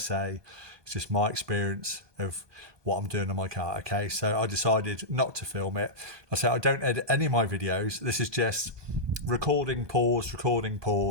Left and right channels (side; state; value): left; late; 1.2 ms